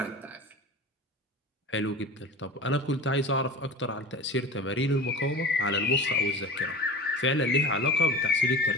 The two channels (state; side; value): normal; both; correlation 0.33